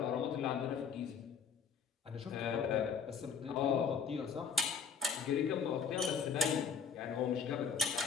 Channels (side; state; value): right; quieter; 6.2 dB